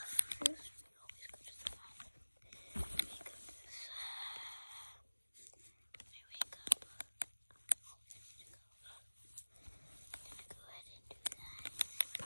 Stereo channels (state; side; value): inverted; both; correlation -1.00